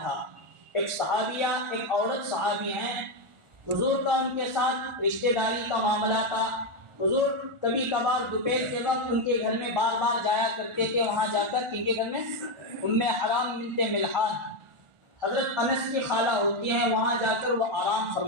ایک صحابیہ، ایک عورت صحابی ہیں، حضور کا ان کے ساتھ رشتہ داری کا معاملہ تھا۔ حضور کبھی کبھار دوپہر کے وقت ان کے گھر میں بار بار جایا کرتے تھے، وہاں جا کر ان کے گھر میں حرام بنت ملحان حضرت انس کی خالہ ہوتی ہیں، وہاں جا کر وہ آرام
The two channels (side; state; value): left; late; 1.4 ms